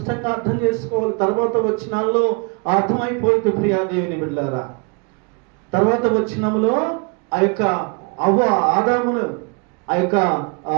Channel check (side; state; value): left; quieter; 33.4 dB